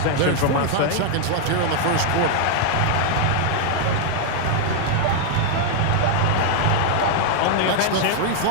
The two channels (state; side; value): different; both; correlation 0.00